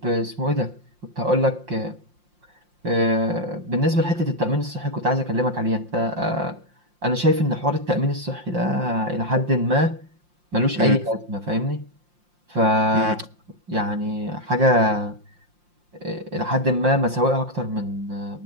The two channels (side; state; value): left; late; 5.7 ms